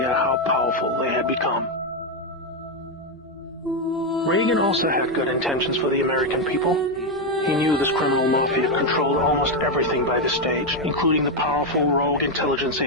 how powerful they had become. Reagan also had good intentions for the American people. He knew this criminal mafia controlled almost everything by this stage, including the powerful rogue intelligence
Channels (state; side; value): normal; both; correlation 0.05